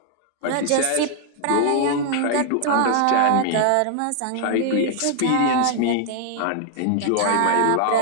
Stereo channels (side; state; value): both; different; correlation 0.00